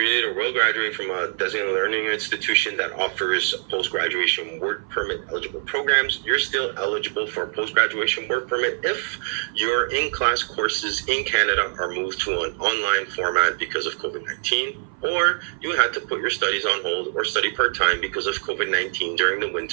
or will graduate from a designated learning institution that offers post-graduation work permit eligible programs, you're still eligible for a post-graduation work permit if your in-class courses in Canada are moved to an online format because of COVID-19, or you had to put your studies on hold or study part-time because of COVID-19 during the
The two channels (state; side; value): silent; left; 58 dB below the other